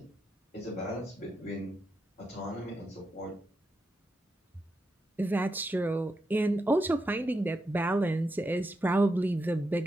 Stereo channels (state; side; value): normal; both; correlation 0.86